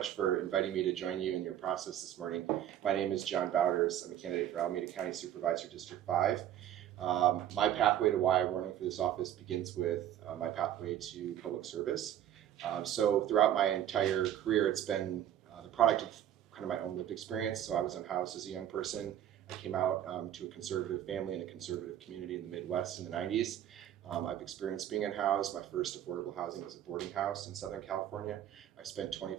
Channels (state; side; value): quieter; left; 11.1 dB